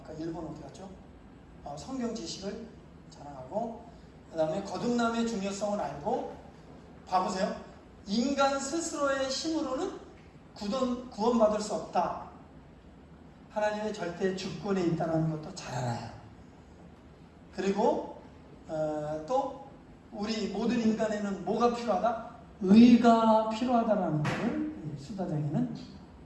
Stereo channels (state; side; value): identical; both; correlation 1.00